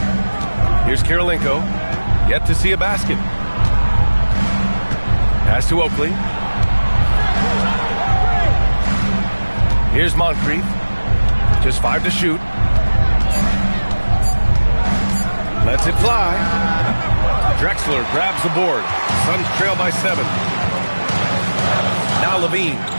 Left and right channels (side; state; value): both; inverted; correlation -1.00